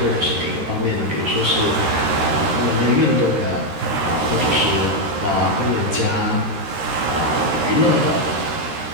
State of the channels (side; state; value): left; late; 13 ms